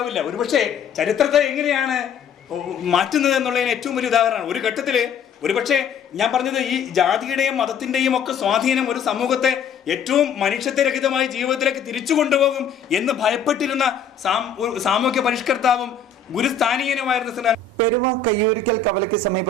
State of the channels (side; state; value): right; quieter; 5.8 dB